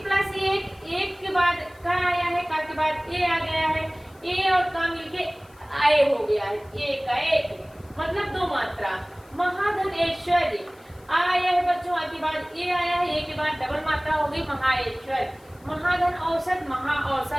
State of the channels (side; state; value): left; noise; hiss, 30 dB below the sound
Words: प्लस 1, 1 के बाद का आया है, का के बाद ए आ गया है, ए और का मिलके आए हो गया है, एक का एक, मतलब 2 मात्रा। महाधन ऐश्वर्य आया है बच्चों, आ के बाद ए आया है, ए के बाद डबल मात्रा हो गई महाऐश्वर्य। महाधन औसत महा